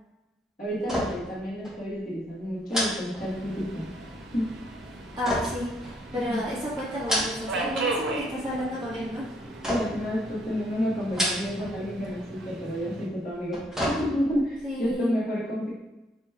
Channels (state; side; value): normal; both; correlation 0.68